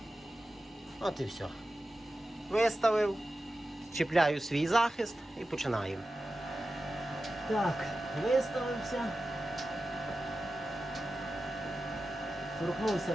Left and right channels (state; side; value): normal; both; correlation 0.93